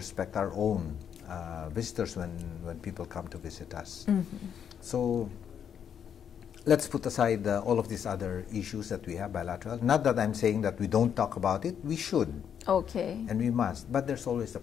our own visitors when people come to visit us. So let's put aside all of these other issues that we have bilateral. Not that I'm saying that we don't talk about it. We should. Okay. And we must. But there's always a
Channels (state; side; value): quieter; right; 8.3 dB